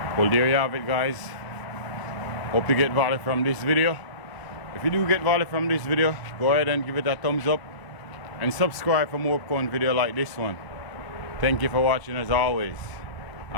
Well, there you have it guys. Hope you get value from this video. If you do get value from this video, go ahead and give it a thumbs up and subscribe for more upcoming video like this one. Thank you for watching as always,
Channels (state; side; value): late; right; 1.0 ms